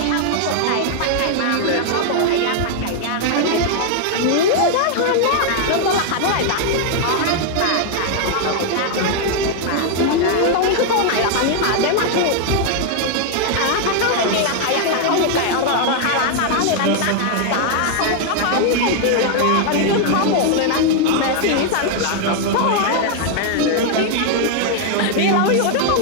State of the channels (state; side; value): different; both; correlation 0.00